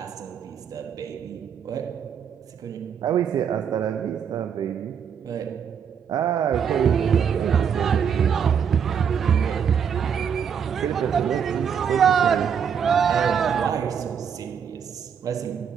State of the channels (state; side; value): quieter; left; 7.5 dB